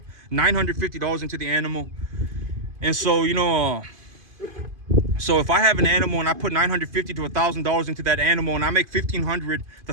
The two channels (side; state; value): left; late; 2.5 ms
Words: $950 into the animal. And so, so if I have an animal and I put $950 to $1,000 into that animal and I make $1,500,